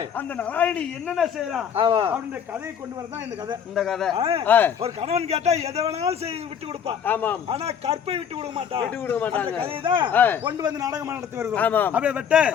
அந்த நலாயினி என்னென்ன செய்யலாம் அப்படின்ற கதையை கொண்டு வரதான் இந்த கதை. ஒரு கணவன் கேட்டா எதை வேணாலும் செய்து விட்டு கொடுப்பா. ஆனா கற்பை விட்டு கொடுக்க மாட்டான். அந்த கதையை தான் கொண்டு வந்து நாடகமா நடத்தி வருகிறோம். அப்படியே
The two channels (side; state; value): right; quieter; 8.0 dB